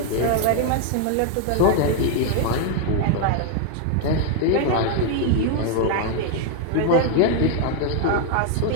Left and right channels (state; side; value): different; both; correlation 0.00